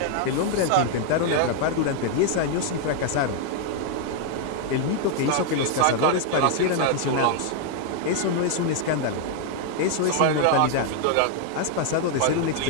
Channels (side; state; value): both; different; correlation 0.00